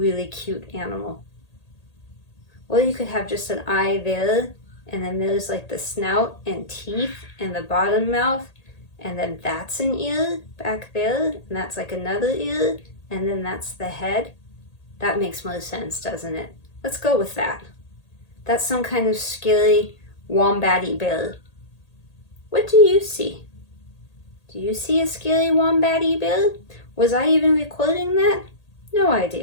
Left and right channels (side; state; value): right; late; 1.8 ms